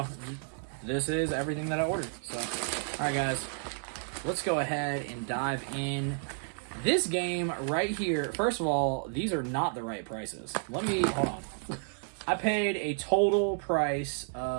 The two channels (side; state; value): left; silent; 57 dB below the other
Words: this is everything that I ordered. So, all right, guys, let's go ahead and dive in. This game right here, first of all, these are not the right prices. Hold on. I paid a total price